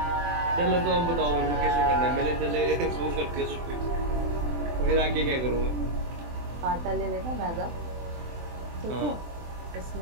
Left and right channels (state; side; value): late; left; 24 ms